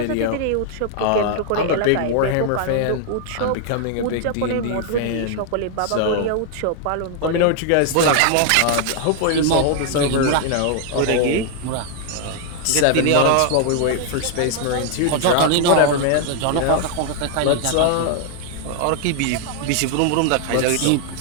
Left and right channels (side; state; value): both; different; correlation 0.00